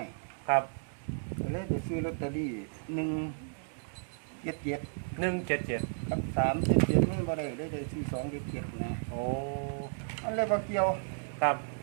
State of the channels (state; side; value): silent; left; digital silence